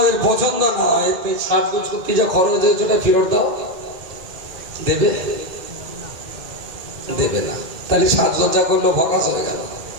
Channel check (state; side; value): late; left; 2.5 ms